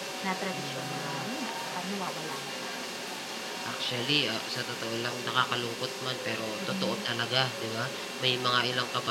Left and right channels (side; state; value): both; identical; correlation 1.00